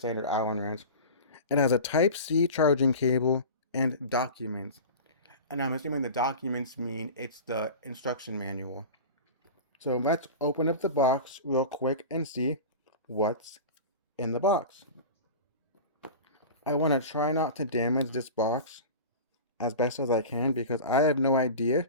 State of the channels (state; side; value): inverted; both; correlation -0.32